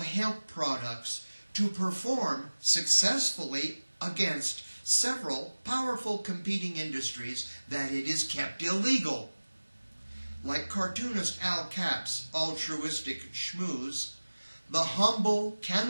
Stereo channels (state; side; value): inverted; both; correlation -1.00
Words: hemp products to perform successfully against several powerful competing industries that it is kept illegal. Like cartoonist Al Cap's altruistic schmooze, the humble